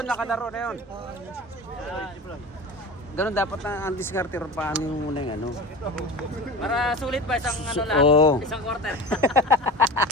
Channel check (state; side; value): normal; both; correlation 0.33